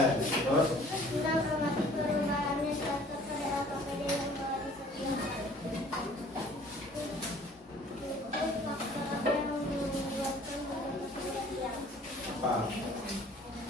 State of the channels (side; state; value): both; normal; correlation 0.53